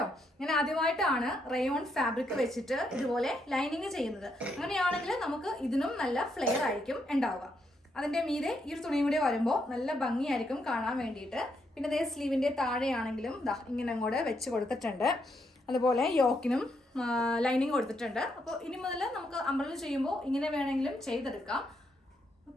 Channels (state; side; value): normal; both; correlation 0.78